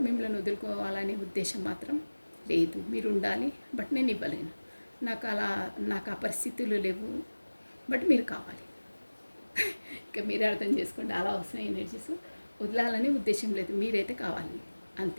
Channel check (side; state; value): both; inverted; correlation -1.00